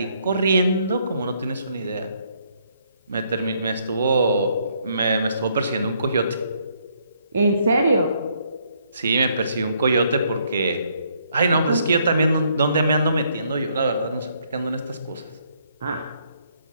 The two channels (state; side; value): inverted; both; correlation -0.70